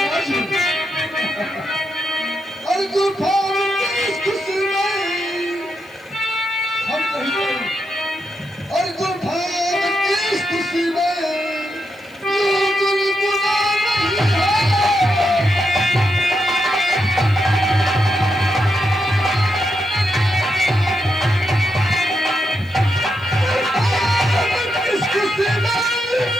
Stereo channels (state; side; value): noise; left; hiss, 29 dB below the sound